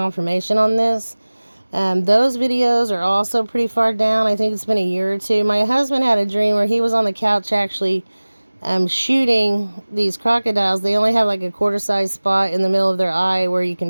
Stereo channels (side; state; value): both; inverted; correlation -1.00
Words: on this. Those videos are also pretty far down. I think it's been a year or 2. My husband had a dream where he was on the couch actually shooting these crocodiles. They only have like a quarter-size spot in the middle of their eye where you can